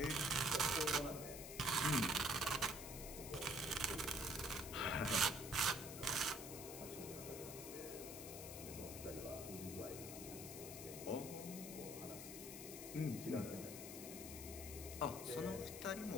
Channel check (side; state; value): left; noise; hiss, 9 dB below the sound